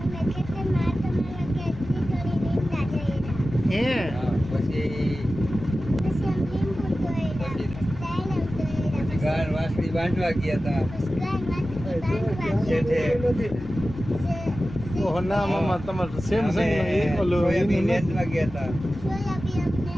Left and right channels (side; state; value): left; noise; rumble, 14 dB below the sound